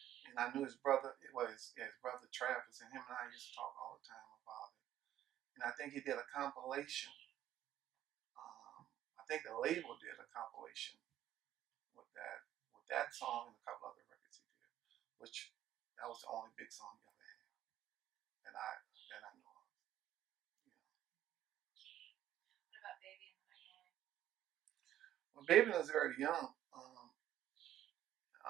and I knew his brother. It was his brother Travis, and him and I used to talk all the time about it. And I think he did a compilation. I think the label did a compilation with that song and a couple other records he did, which that was the only big song he ever had that I know of. You know. What about Baby and the Magnolia? Well, Baby was very young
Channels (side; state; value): left; quieter; 12.2 dB